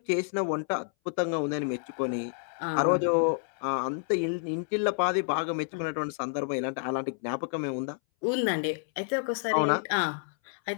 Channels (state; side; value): silent; right; 58 dB below the other